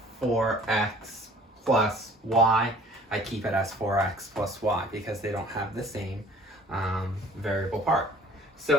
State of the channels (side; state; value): both; normal; correlation 0.52